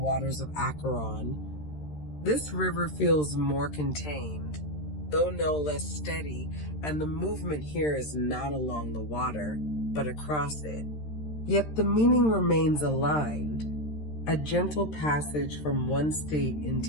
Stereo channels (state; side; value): late; right; 13 ms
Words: of Acheron, this river feels more contained, though no less steady, and the movement here is not along the water, but across it. Yet the meaning remains aligned, a gentle passage from one state